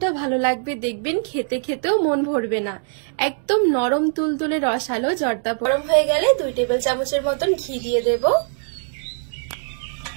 ভালো লাগবে, দেখবেন খেতে খেতেও মন ভরবে না। একদম নরম তুলতুলে রসালো জর্দা গরম হয়ে গেলে 2 টেবিল চামচের মতন ঘি দিয়ে দেব।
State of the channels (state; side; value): silent; left; digital silence